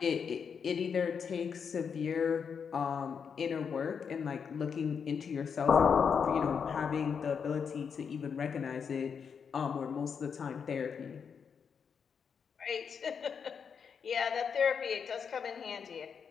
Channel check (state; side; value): quieter; right; 6.6 dB